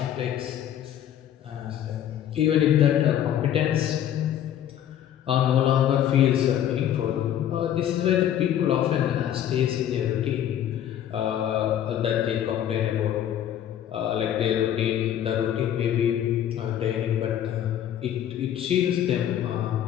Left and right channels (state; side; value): quieter; right; 10.6 dB